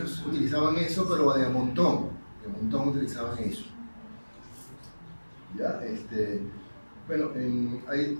utilizaban eso, pero de montón utilizaban eso. ¿Ya? Bueno, hay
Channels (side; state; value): both; inverted; correlation -1.00